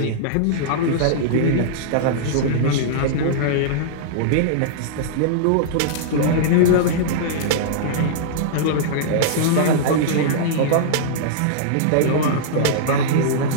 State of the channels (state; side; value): different; both; correlation -0.02